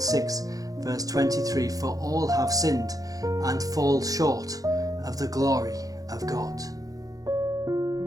6 verse 23, for all have sinned and fall short of the glory of God.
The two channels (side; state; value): left; late; 0.17 ms